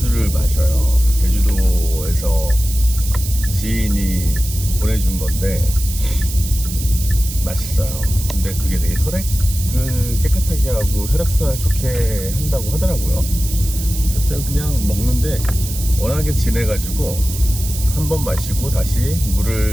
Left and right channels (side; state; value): right; noise; hiss, 9 dB below the sound